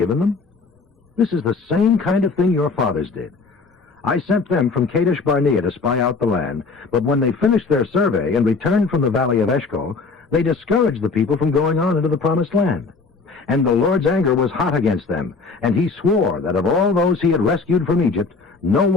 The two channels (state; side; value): quieter; right; 4.3 dB